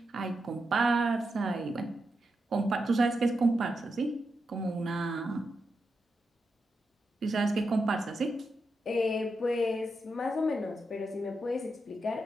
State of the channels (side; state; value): both; normal; correlation 0.86